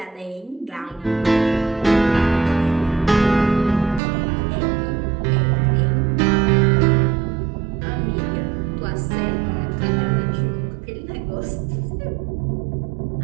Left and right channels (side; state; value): left; drops out; at 4.0 s